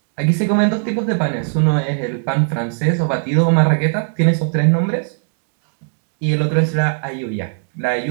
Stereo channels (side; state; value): left; silent; digital silence